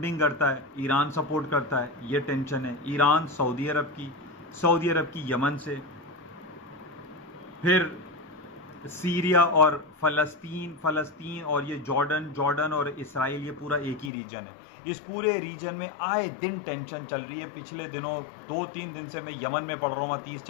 करता है, ईरान सपोर्ट करता है। ये टेंशन है ईरान सऊदी अरब की, सऊदी अरब की यमन से, फिर सीरिया और फ़लस्तीन और ये जॉर्डन और इसराइल, ये पूरा एक ही रीजन है। इस पूरे रीजन में आए दिन टेंशन चल रही है। पिछले दिनों 2-3 दिन से मैं यमन में पढ़ रहा हूँ,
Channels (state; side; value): drops out; right; at 14.1 s